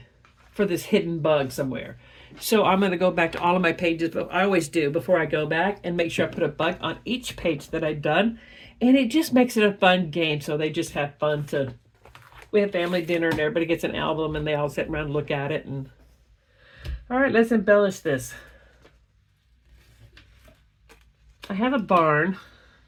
for this hidden bug somewhere. So I'm going to go back to all of my pages, but I always do before I go back, and make sure I put a bug on each page that I've done. And it just makes it a fun game. So they just have fun we have family dinner and everybody gets an album and they all sit around and look at it. And all right, let's embellish this. I have a barn,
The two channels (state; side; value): identical; both; correlation 1.00